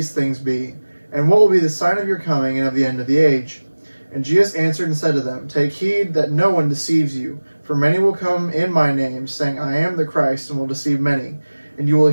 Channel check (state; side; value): inverted; both; correlation -1.00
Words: things be? And what will be the sign of your coming and of the end of the age? And Jesus answered and said to them, Take heed that no one deceives you, for many will come in my name, saying, I am the Christ, and will deceive many. And you will